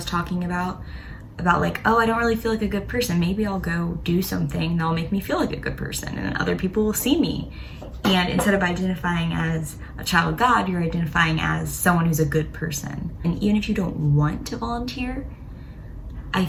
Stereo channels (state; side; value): identical; both; correlation 1.00